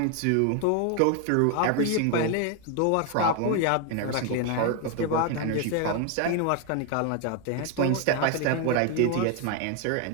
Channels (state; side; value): different; both; correlation 0.01